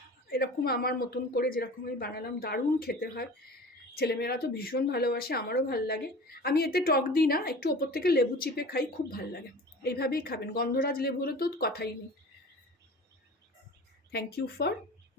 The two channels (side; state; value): both; normal; correlation 0.39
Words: এরকম আমার মতন করে, যেরকম আমি বানালাম। দারুণ খেতে হয়, ছেলেমেয়েরা তো ভীষণ ভালোবাসে, আমারও ভাল লাগে। আমি এতে টক দিই না, একটু ওপর থেকে লেবু চিপে খাই, খুব ভাল লাগে। এইভাবেই খাবেন, গন্ধরাজ লেবু হলে তো কথাই নেই। Thank you for